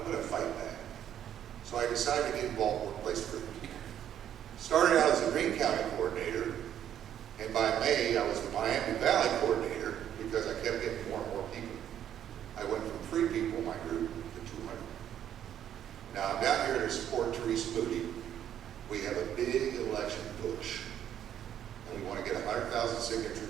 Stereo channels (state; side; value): quieter; left; 10.3 dB